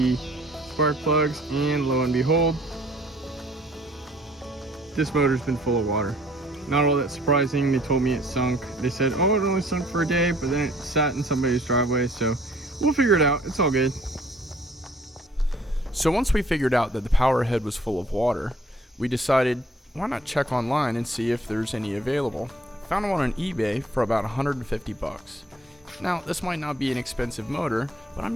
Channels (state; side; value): normal; both; correlation 0.59